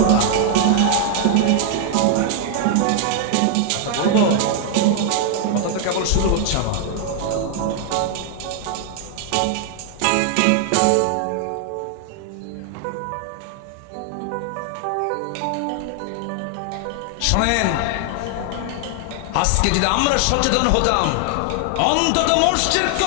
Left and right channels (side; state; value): both; different; correlation 0.00